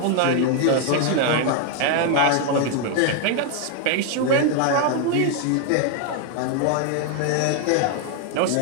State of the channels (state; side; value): different; both; correlation 0.01